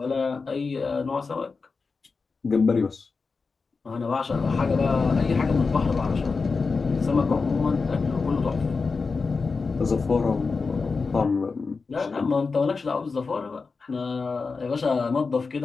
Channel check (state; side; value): quieter; right; 4.5 dB